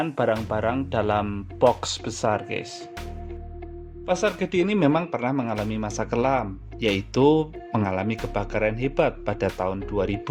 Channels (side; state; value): both; identical; correlation 1.00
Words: barang-barang dalam box besar guys. Pasar gede ini memang pernah mengalami masa kelam, yaitu mengalami kebakaran hebat pada tahun 2000.